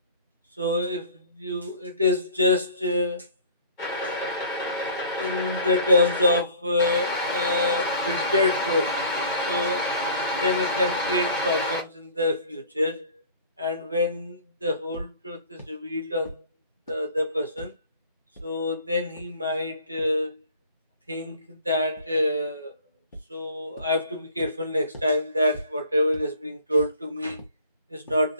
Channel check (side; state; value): both; inverted; correlation -0.48